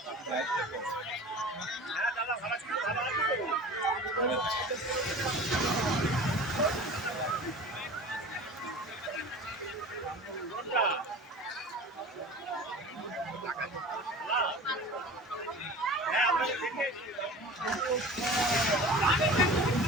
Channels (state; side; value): normal; both; correlation 0.38